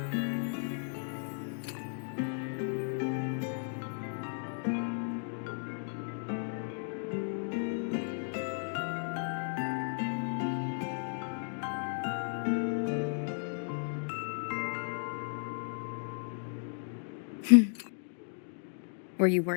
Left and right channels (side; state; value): right; silent; 55 dB below the other